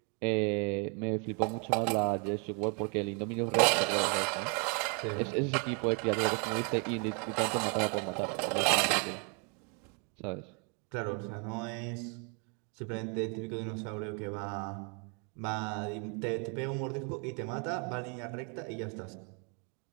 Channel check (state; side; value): quieter; left; 36.5 dB